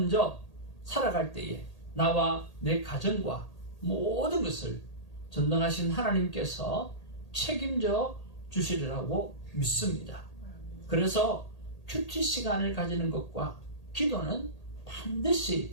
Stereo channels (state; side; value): late; right; 1.8 ms